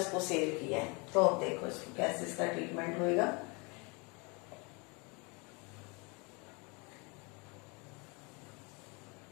सेल किया है। तो अब देखो इसको कैसे इसका ट्रीटमेंट होएगा।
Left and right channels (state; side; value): quieter; right; 30.0 dB